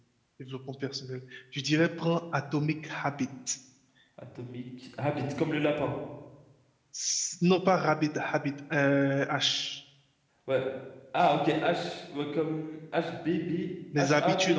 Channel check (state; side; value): identical; both; correlation 1.00